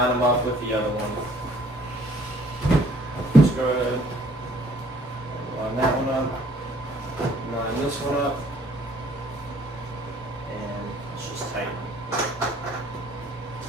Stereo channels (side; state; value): both; normal; correlation 0.59